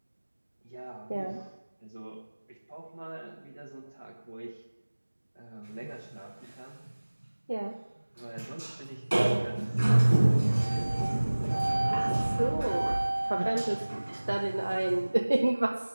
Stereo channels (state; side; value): inverted; both; correlation -1.00